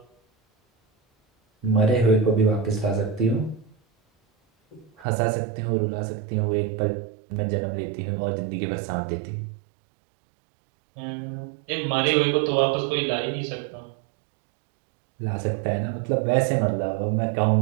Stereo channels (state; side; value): drops out; left; at 5.1 s